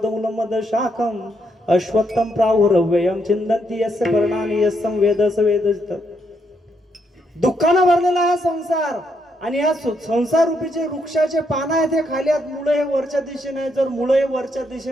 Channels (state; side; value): normal; both; correlation 0.77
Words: शाखम अश्वत्थम प्राहुरव्ययम चिंतन्ति यस्य पर्णानि यस्सं वेद स वेदजित. दुःखानं भरलेला हा संसार आणि या संसार रूपीचे वृक्षाचे पानं आहेत हे खाली आहेत, मुळे हे वरच्या दिशेने आहे. जर मुळे हे वरच्या